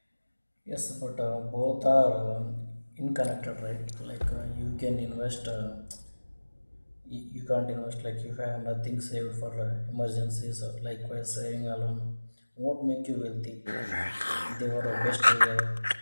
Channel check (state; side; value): inverted; both; correlation -1.00